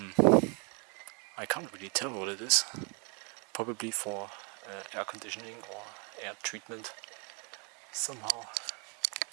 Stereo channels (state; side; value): quieter; left; 35.2 dB